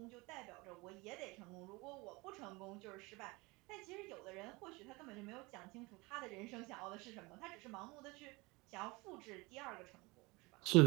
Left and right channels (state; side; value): quieter; left; 24.6 dB